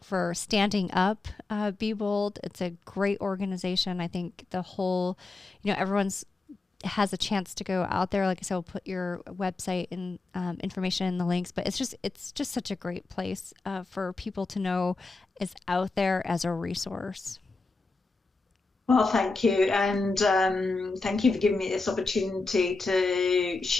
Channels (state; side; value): quieter; right; 3.6 dB